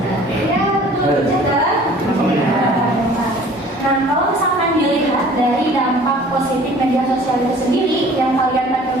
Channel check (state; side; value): normal; both; correlation 0.50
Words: Ya betul, jaga. Nah, kalau misalkan dilihat dari dampak positif media sosial itu sendiri yang kalian pakai